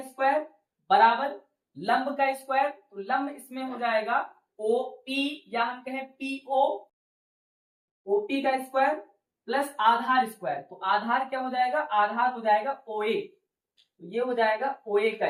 स्क्वायर बराबर लंब का स्क्वायर, तो लंब इसमें हो जाएगा OP या हम कहें PO, OP का स्क्वायर प्लस आधार स्क्वायर, तो आधार क्या हो जाएगा, आधार हो जाएगा OA, तो ये हो जाएगा OA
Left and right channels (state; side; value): identical; both; correlation 1.00